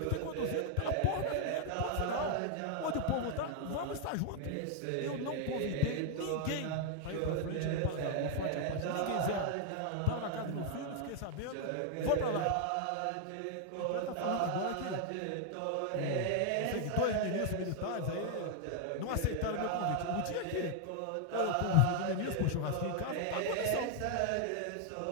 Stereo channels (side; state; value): both; different; correlation 0.00